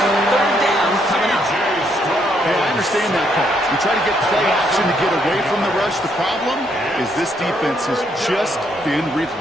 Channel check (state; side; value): noise; right; rumble, 26 dB below the sound